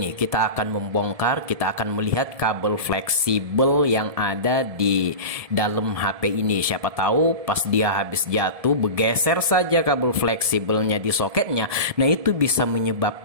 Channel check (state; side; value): late; left; 1.7 ms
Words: Kita akan membongkar, kita akan melihat kabel fleksibel yang ada di dalam HP ini. Siapa tahu pas dia habis jatuh bergeser saja kabel fleksibelnya di soketnya. Nah, itu bisa